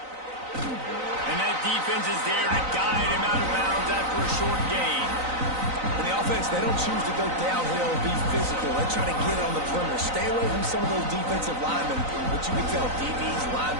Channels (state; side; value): late; left; 3.9 ms